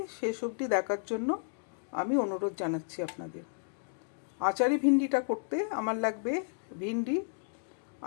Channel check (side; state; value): right; silent; digital silence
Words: শেষ অবধি দেখার জন্য আমি অনুরোধ জানাচ্ছি আপনাদের। আচারি ভিন্ডিটা করতে আমার লাগবে ভিন্ডি।